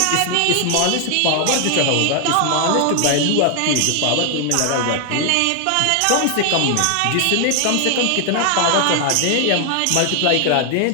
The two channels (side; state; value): both; different; correlation 0.00